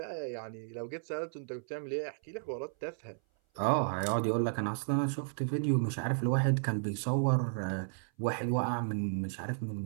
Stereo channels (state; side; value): silent; left; 55 dB below the other